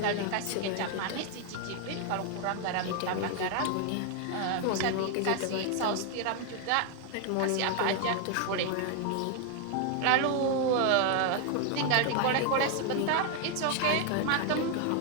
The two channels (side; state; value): both; different; correlation 0.01